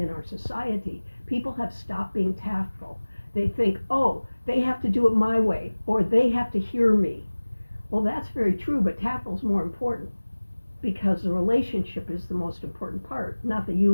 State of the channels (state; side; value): inverted; both; correlation -1.00